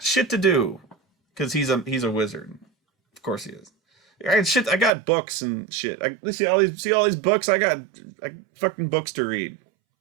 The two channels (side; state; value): left; drops out; at 4.9 s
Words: shit to do, because he's a wizard. Of course he is. I got books and shit. See all these books. I got fucking books to read.